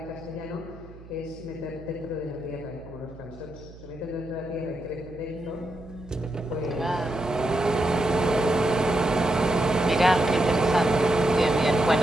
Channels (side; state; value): right; noise; hum, 19 dB below the sound